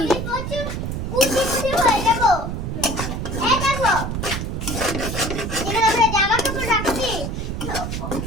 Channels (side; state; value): right; noise; rumble, 3 dB below the sound